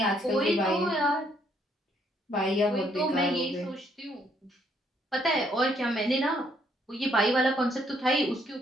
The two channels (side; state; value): both; normal; correlation 0.69